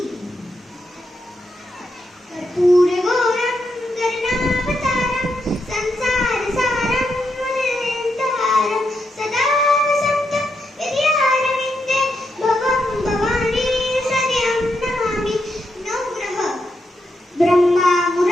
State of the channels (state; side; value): normal; both; correlation 0.82